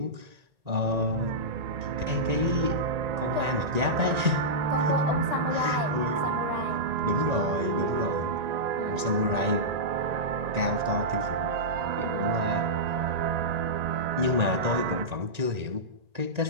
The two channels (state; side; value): late; left; 1.9 ms